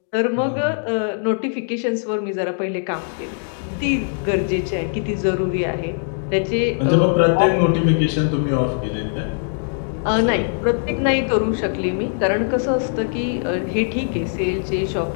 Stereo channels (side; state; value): right; silent; 65 dB below the other